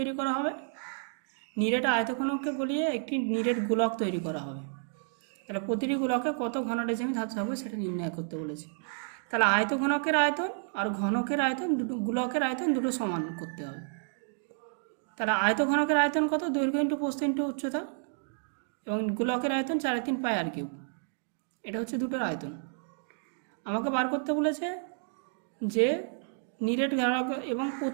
করা হবে, নিরেট আয়তঘনককে গলিয়ে একটি নিরেট গোলক তৈরি করা হবে। তাহলে প্রতিটি গোলকে কত ঘন ডেসিমি ধাতু থাকবে সেটা নির্ণয় করতে বলেছে। তাহলে আয়তঘনকের আয়তন আর ঘনকের আয়তন দুটো, গোলকের আয়তন দুটো সমান করতে হবে। তাহলে আয়তঘনকের আয়তন কত, দৈর্ঘ্য ইন্টু প্রস্থ ইন্টু উচ্চতা, এবং গোলকের আয়তন 3.5 পাই আর কিউ। এটা হচ্ছে দুটোর আয়তন। আমাকে বার করতে বলেছে যে নিরেট গোলক এবং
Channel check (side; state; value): left; silent; 57 dB below the other